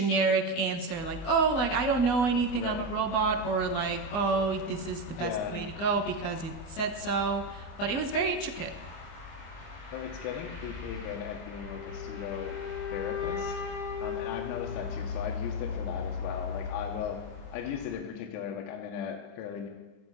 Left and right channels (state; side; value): late; right; 24 ms